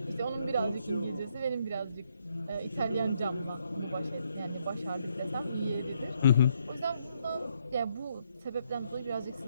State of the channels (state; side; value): inverted; both; correlation -0.74